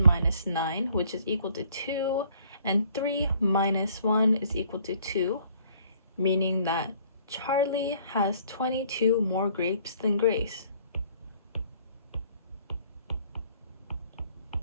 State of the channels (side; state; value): both; inverted; correlation -0.59